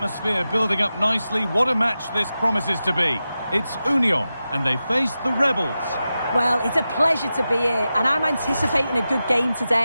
building up nicely, what a match this promises to be. It's Union and they face the Rebels. Well, it's a pleasure to be here and I'm anticipating a good game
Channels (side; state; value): both; inverted; correlation -0.92